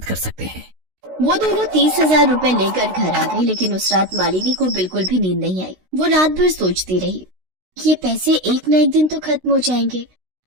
कर सकते हैं। वो दोनों 30,000 रुपए लेकर घर आ गई, लेकिन उस रात मालिनी को बिल्कुल भी नींद नहीं आई। वो रात भर सोचती रही, ये पैसे एक न एक दिन तो खत्म हो जाएंगे,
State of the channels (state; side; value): late; left; 16 ms